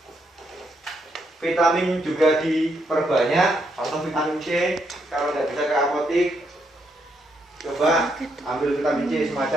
Vitamin juga diperbanyak, atau vitamin C. Kalau tidak bisa ke apotik, coba ambil vitamin C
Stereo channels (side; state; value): both; normal; correlation 0.77